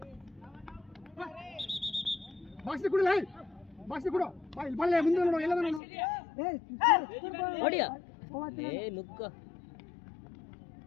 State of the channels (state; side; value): drops out; right; at 5.8 s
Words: ಬಾಕ್ಸ್ ಕೊಡು ಲೈ ಬಾಕ್ಸ್ ಕೊಡು ಬಾ ಇಲ್ಲಿ ಬಲ್ಲೆ ಮುಂದೆ ನೋಡು ಎಲ್ಲ ನೋಡು ಹೊಡಿಯ ಏ ನುಗ್ಗ